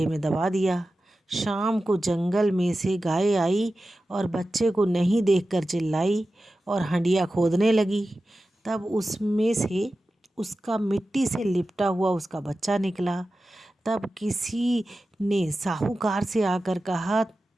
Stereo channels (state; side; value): normal; both; correlation 0.94